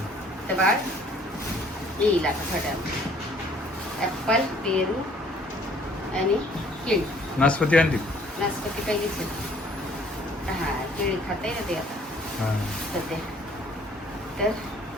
तर बाळ येईल आता थोड्या ॲपल पेरू आणि केळी नाशपती आणली नाशपती पहिलीच हा केळी खाता ना ते आता हा. सध्या तर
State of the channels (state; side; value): normal; both; correlation 0.58